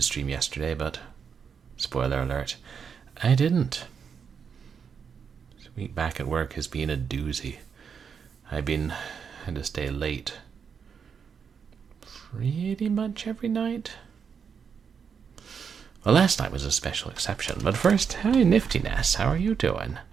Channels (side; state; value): left; quieter; 6.6 dB